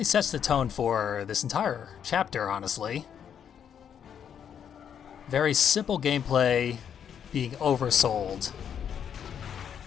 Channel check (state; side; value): quieter; right; 8.4 dB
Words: sets the tone for this entire chapter, honestly. Very simple gameplay being oversold